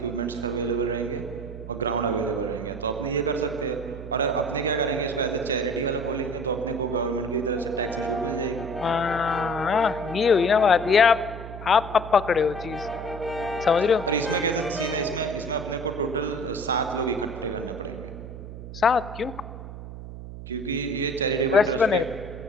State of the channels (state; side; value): noise; right; hum, 11 dB below the sound